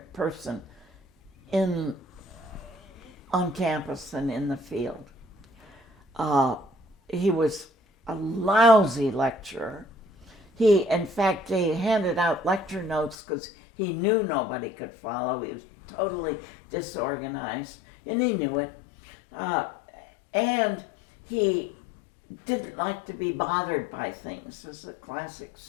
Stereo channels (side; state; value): right; drops out; at 13.2 s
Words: person on campus than in the field. He was a lousy lecturer. In fact, he handed out lecture notes because he knew nobody could follow. He was totally disorganized, and he knew it. And he didn't like to be bothered by things. There's a classic